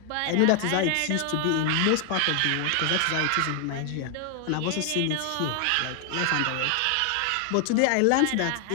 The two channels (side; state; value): both; different; correlation 0.00